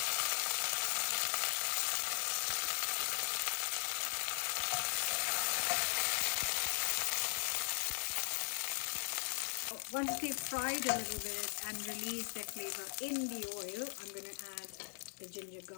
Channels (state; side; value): silent; right; 52 dB below the other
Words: Once they've fried a little bit and released their flavor in the oil, I'm going to add the ginger